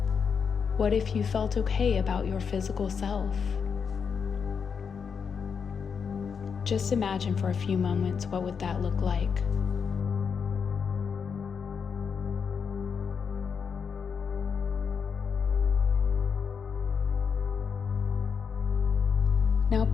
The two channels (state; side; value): quieter; right; 6.3 dB